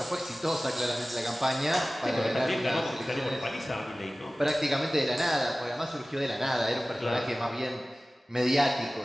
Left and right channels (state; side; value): normal; both; correlation 0.97